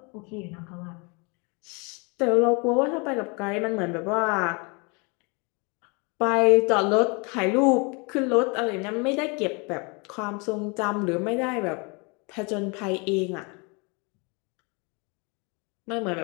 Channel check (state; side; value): quieter; right; 31.3 dB